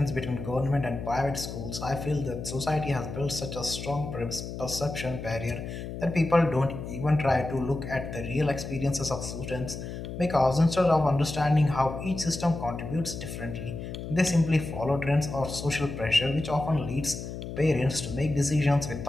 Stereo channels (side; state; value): left; noise; hum, 8 dB below the sound